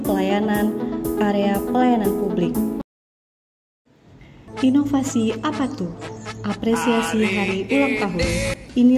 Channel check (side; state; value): both; identical; correlation 1.00